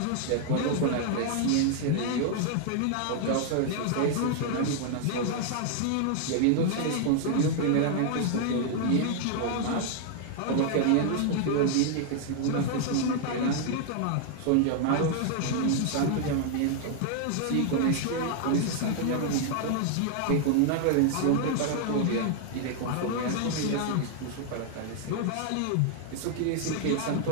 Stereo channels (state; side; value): different; both; correlation 0.00